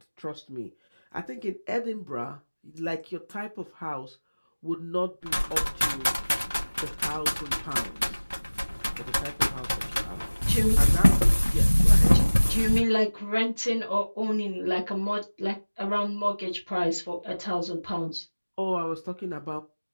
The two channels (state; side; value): inverted; both; correlation -1.00